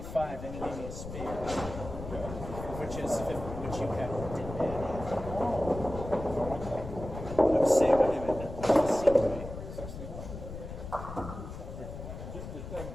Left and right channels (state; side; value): noise; left; rumble, 9 dB below the sound